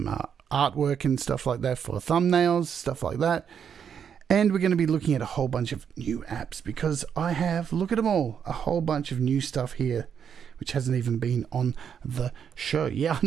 artwork and stuff like that for thumbnails, stuff like that. And we're going to be looking at a whole bunch of new apps because I have, look at them all, a whole bunch of new stuff here, which hasn't even been on the show. Yeah,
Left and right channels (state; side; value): quieter; left; 7.8 dB